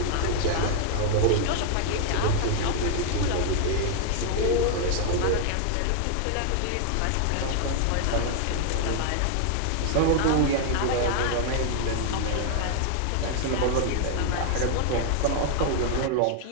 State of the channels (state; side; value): different; both; correlation 0.00